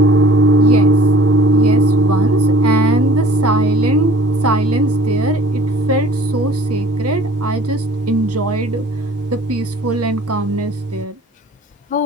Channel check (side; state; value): both; normal; correlation 0.49